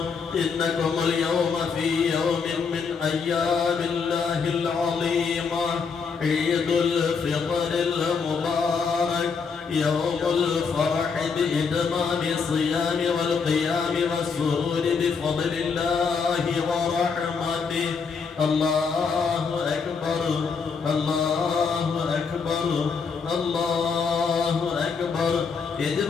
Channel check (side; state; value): right; quieter; 5.5 dB